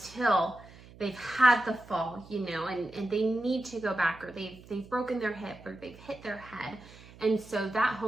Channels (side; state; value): right; noise; hum, 20 dB below the sound